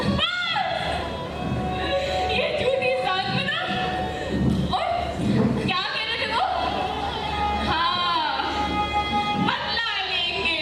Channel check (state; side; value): identical; both; correlation 1.00